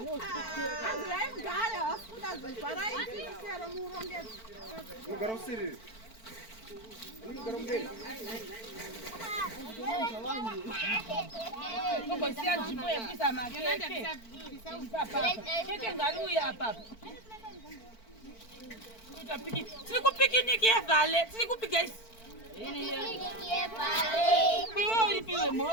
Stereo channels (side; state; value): right; late; 4.5 ms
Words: Siku picnic ya vale, siku guys. Ya vale. Piwo piwo